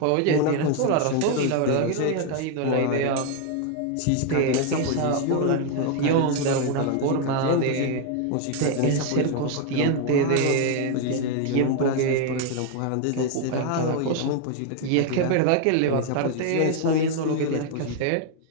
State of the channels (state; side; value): different; both; correlation 0.01